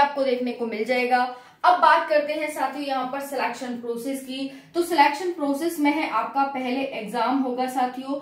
देखने को मिल जाएगा। अब बात करते हैं साथियों यहाँ पर सिलेक्शन प्रोसेस की। तो सिलेक्शन प्रोसेस में है आपका पहले एग्जाम होगा साथियों,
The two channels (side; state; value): both; identical; correlation 1.00